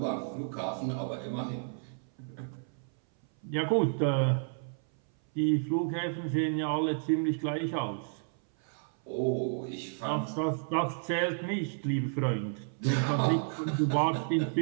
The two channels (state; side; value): silent; left; 57 dB below the other